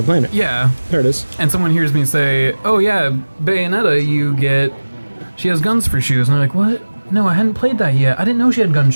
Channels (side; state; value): both; inverted; correlation -1.00